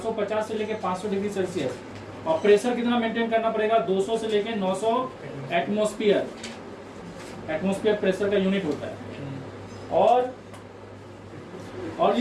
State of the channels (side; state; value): both; identical; correlation 1.00